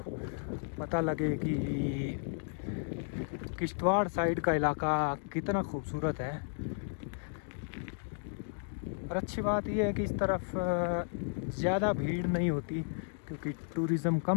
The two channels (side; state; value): right; silent; digital silence